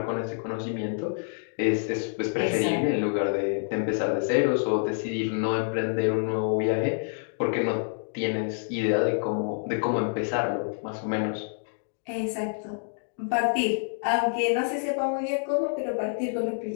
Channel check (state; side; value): silent; right; digital silence